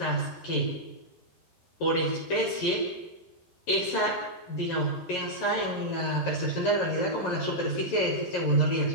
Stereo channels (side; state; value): right; late; 11 ms